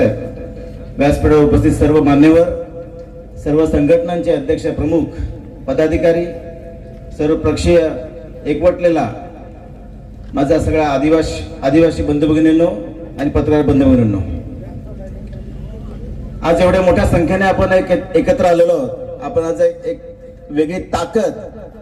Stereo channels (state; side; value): identical; both; correlation 1.00